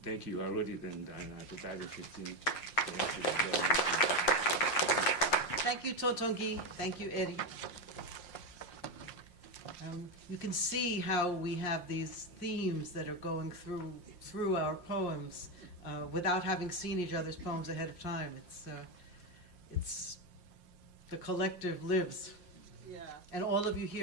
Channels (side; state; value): right; late; 5.6 ms